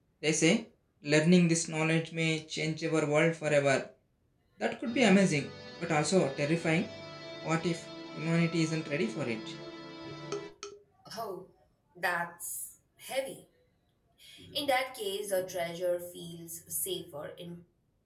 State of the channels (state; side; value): identical; both; correlation 1.00